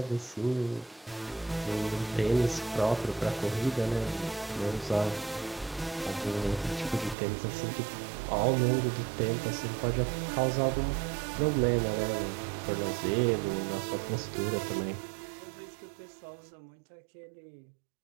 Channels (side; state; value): left; drops out; at 7.2 s